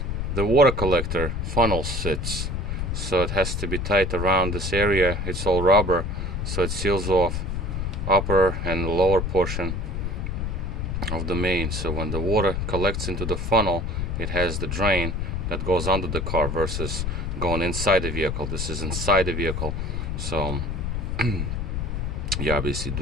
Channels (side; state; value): left; noise; rumble, 2 dB below the sound